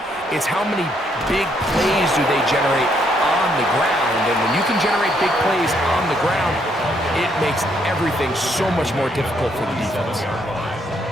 it's how many big plays do they generate on the ground. And when you can generate big plays on the ground, it makes everything so much more difficult for the defense.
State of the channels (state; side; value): normal; both; correlation 0.72